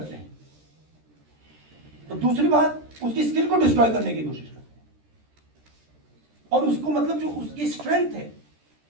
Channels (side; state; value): left; late; 13 ms